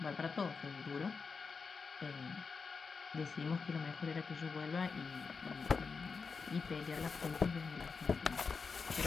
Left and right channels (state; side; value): quieter; right; 5.0 dB